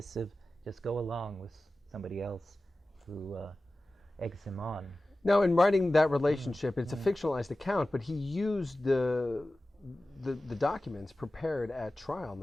just go along with somebody else who eggs him on? Now, in writing that relationship, it's a fictionalized account, but he used the documents prepared at trial and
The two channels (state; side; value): normal; both; correlation 0.95